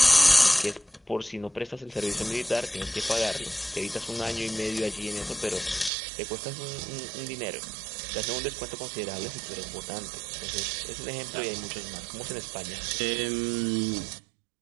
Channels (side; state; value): left; drops out; at 5.9 s